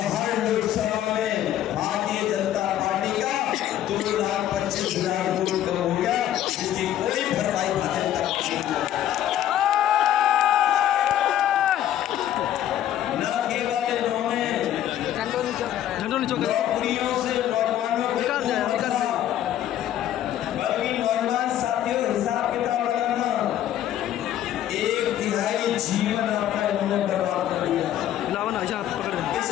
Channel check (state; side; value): quieter; right; 11.8 dB